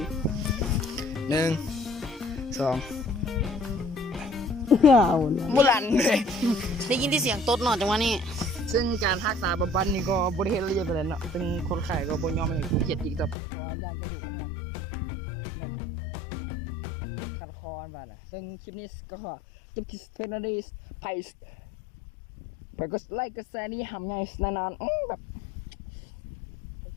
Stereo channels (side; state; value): right; drops out; at 13.4 s